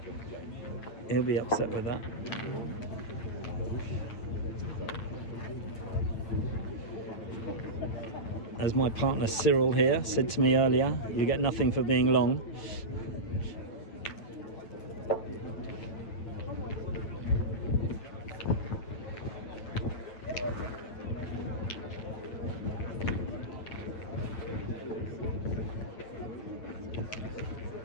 He'll be upset with that. As my partner Cyril here said to me earlier, you get nothing for being long.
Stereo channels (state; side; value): late; right; 9.0 ms